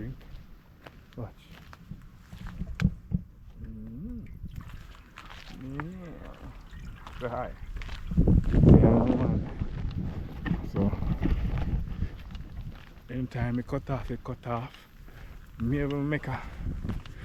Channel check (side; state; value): both; identical; correlation 1.00